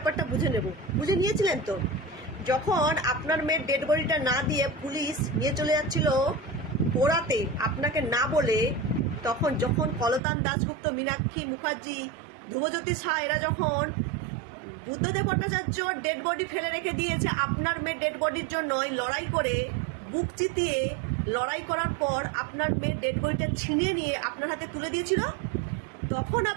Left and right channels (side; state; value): left; drops out; at 10.2 s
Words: বুঝে নেব। বুঝে নিয়েছিলেন তো? যখন আপনার মেয়ের ডেড বডিটা না দিয়ে পুলিশ নিয়ে চলে যাচ্ছিল পোড়াতে আপনাকে না বলে, যখন কলতান দাশগুপ্ত, মীনাক্ষী মুখার্জি, ধ্রুবজ্যোতি শাহ এরা যখন বুদ্ধদেব ভট্টাচার্য ডেড বডি ফেলে রেখে দিয়েছে আপনার মেয়ের ডেড বডির জন্য, লড়াই করে বুক চিতিয়ে লড়াই করার পর আপনার মেয়ের ডেড বডিটা ছিনিয়ে নিয়ে আপনার হাতে তুলে দিয়েছিল, তখন